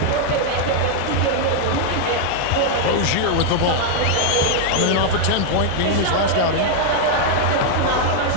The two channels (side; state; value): both; different; correlation 0.00